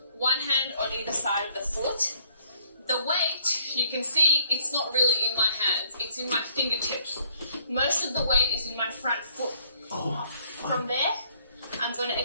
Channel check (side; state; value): both; inverted; correlation -0.64